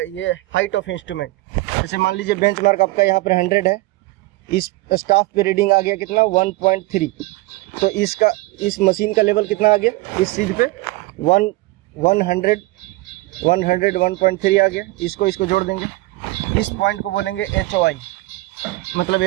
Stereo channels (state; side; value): quieter; left; 20.6 dB